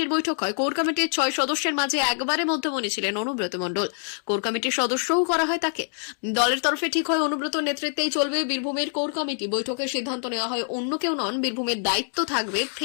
বৈঠক হয়। কোর কমিটির 6 সদস্যের মাঝে একবারে মধ্যমণি ছিলেন অনুব্রত মণ্ডল। কোর কমিটির সদস্যও করা হয় তাকে। দলের তরফে ঠিক হয় অনুব্রতর নেতৃত্বেই চলবে বীরভূমের কোর কমিটি। বৈঠকের সিদ্ধান্ত নেওয়া হয় অন্য কেউ নন, বীরভূমের দায়িত্ব থাকবে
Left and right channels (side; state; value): right; silent; digital silence